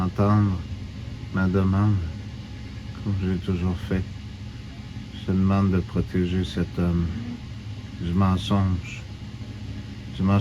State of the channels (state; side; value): identical; both; correlation 1.00